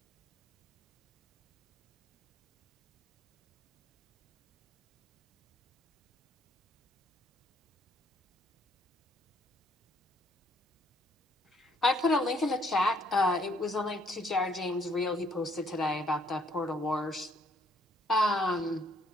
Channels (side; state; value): both; normal; correlation 0.66